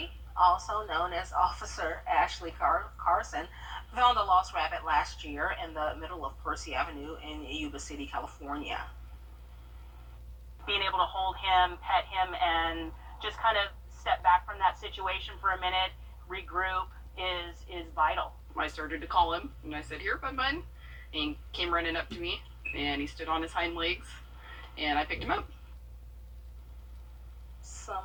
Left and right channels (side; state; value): both; identical; correlation 1.00